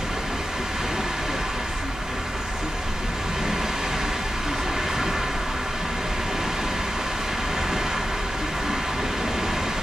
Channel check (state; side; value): normal; both; correlation 0.91